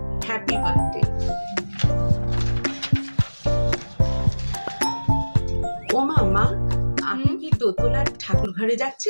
হ্যাপি বার্থডে। ও মা, আপনি কি দোতলার ঠাকুর ঘরে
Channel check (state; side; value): inverted; both; correlation -1.00